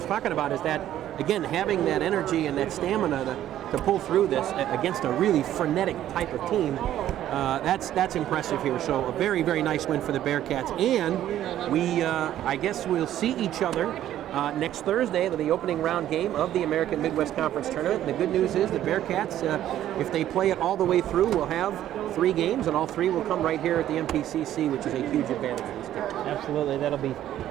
talking about, is that, again, having that energy and that stamina to pull through this against a really frenetic type of team, that's impressive here. So a very, very nice win for the Bearcats. And we, I guess we'll see each other next Thursday, the opening round game of the American Midwest Conference Tournament. The good news is the Bearcats, if they play it all the way through, will have 3 games, and all 3 will come right here at the MPCC, which is a huge advantage for this team. Absolutely. That'll be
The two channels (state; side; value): quieter; left; 12.1 dB